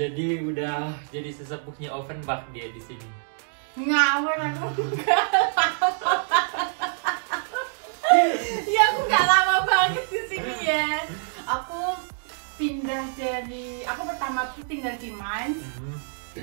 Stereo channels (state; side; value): silent; left; digital silence